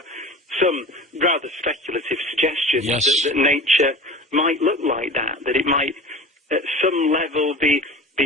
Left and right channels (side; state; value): both; normal; correlation 0.37